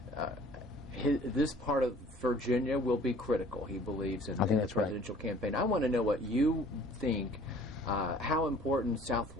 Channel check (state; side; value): normal; both; correlation 0.52